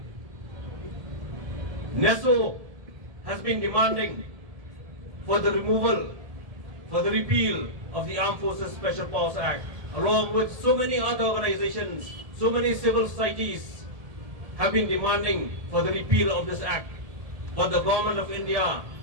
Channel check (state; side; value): late; left; 1.7 ms